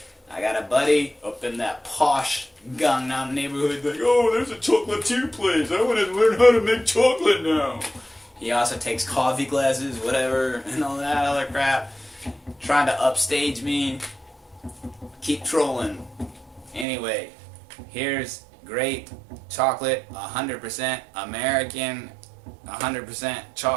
I got a buddy up in that posh Gangnam neighborhood like, oh, there's a chocolatier place. I want to learn how to make chocolate now. He also takes coffee classes, whatever, and all that other crap. Trying to upstage me. Keep trolling. Anyway, here's great chocolate, 100% American, 100%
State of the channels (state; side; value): drops out; left; at 16.9 s